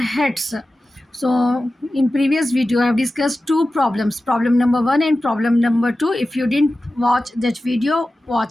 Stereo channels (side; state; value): both; normal; correlation 0.95